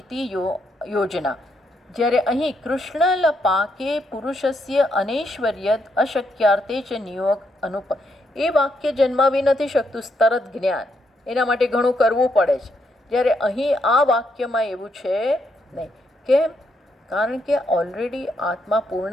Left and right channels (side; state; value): both; normal; correlation 0.77